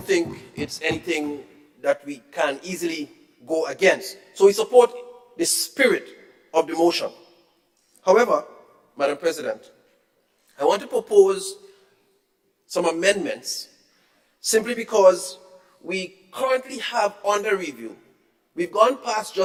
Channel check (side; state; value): both; identical; correlation 1.00